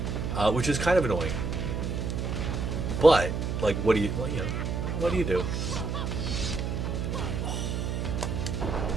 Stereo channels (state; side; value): noise; right; hum, 2 dB below the sound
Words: that, which is kind of annoying. But like, what do you do?